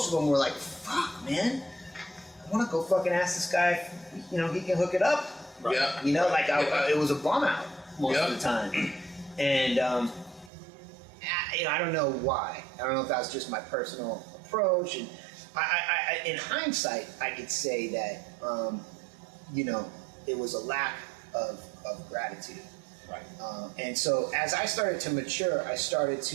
of them were like, fuck, man, I want to go fucking ask this guy if, he can hook it up. Yeah. It was a bum out most of the time. And, I don't know why. I don't know if that was just my personal approach. And I in hindsight, I could say that, it was a lack of gratitude. Right. And so as I started to mature, I started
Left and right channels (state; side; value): drops out; left; at 10.5 s